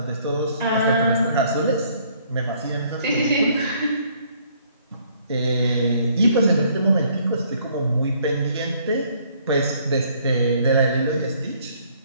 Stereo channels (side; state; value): both; inverted; correlation -0.63